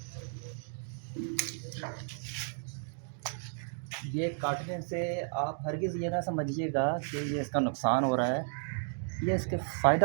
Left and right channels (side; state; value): left; silent; 56 dB below the other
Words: ये काटने से आप हरगिज़ ये ना समझिएगा कि ये इसका नुकसान हो रहा है, ये इसके